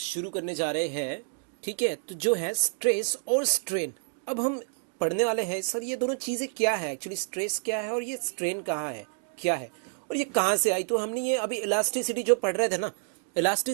करने जा रहे हैं। ठीक है, तो जो है स्ट्रेस और स्ट्रेन। अब हम पढ़ने वाले हैं सर ये दोनों चीज़ें क्या है, एक्चुअली स्ट्रेस क्या है और ये स्ट्रेन कहाँ है, क्या है और ये कहाँ से आई। तो हमने ये अभी इलास्टिसिटी जो पढ़ रहे थे ना,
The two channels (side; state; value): left; silent; 59 dB below the other